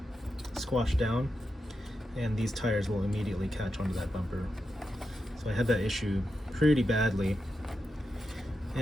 squashed down, and these tires will immediately catch onto that bumper. So I had that issue pretty badly,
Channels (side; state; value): both; normal; correlation 0.87